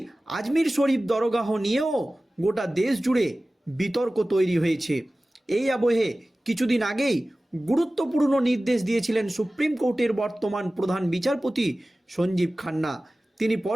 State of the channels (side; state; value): both; normal; correlation 0.97